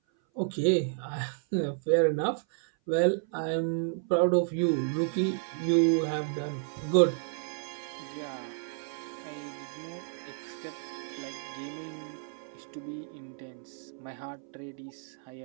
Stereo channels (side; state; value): left; silent; 56 dB below the other